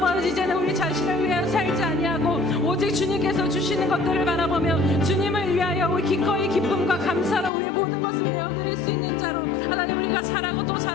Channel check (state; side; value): drops out; right; at 7.5 s